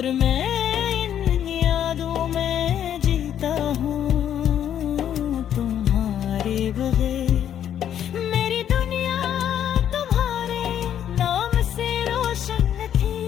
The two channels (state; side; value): quieter; right; 9.9 dB